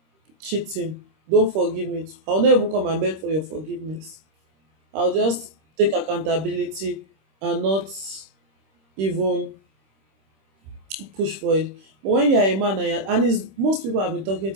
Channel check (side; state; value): left; late; 26 ms